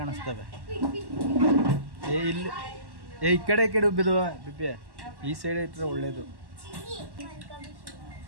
ಕಾಣಿಸ್ತವೆ. ಇಲ್ಲಿ ಈ ಕಡೆ ಬಿದ್ದುವ ಬಿಬ್ಬಿ, ಈ ಸೈಡ್ ಇಟ್ಟರೆ ಒಳ್ಳೇದು.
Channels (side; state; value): left; late; 1.1 ms